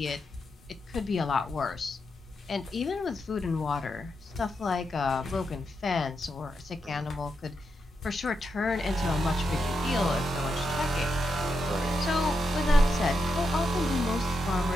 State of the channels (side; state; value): both; normal; correlation 0.85